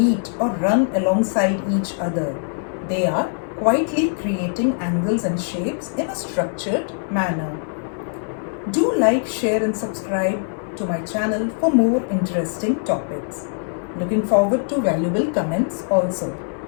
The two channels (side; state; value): right; silent; digital silence